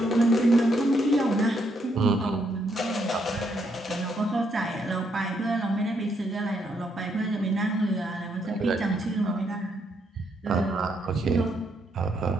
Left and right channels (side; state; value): both; normal; correlation 0.75